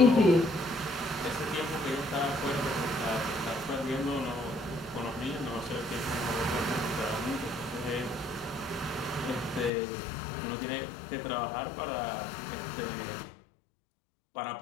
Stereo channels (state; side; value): drops out; right; at 9.7 s